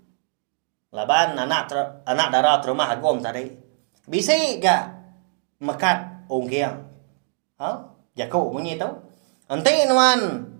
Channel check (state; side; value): silent; left; digital silence